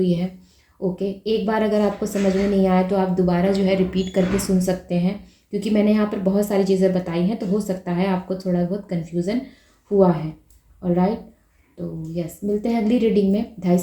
है। ओके, एक बार अगर आपको समझ में नहीं आया तो आप दोबारा जो है रिपीट करके सुन सकते हैं, क्योंकि मैंने यहाँ पर बहुत सारी चीज़ें बताई हैं, तो हो सकता है आपको थोड़ा बहुत कन्फ्यूज़न हुआ है। ऑलराइट, तो यस, मिलते हैं अगली रीडिंग में। 2:30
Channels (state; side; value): identical; both; correlation 1.00